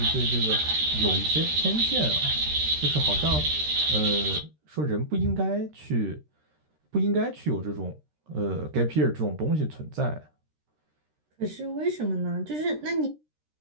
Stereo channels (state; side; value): late; left; 13 ms